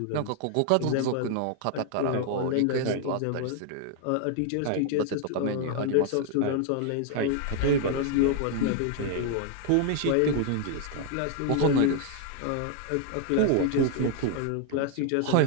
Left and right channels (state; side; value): different; both; correlation 0.00